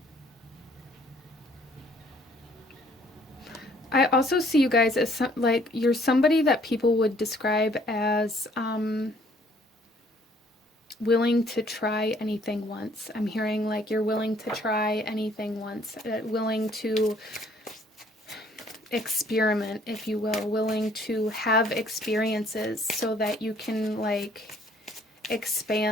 I also see you guys as like, you're somebody that people would describe as willing to try anything once. I'm hearing like you're willing to try anything once, willing to experiment, if you will, willing to have experiences so that you can like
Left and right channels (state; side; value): normal; both; correlation 0.61